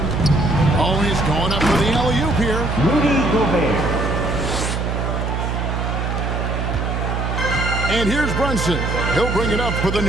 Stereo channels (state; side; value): noise; right; hum, 1 dB below the sound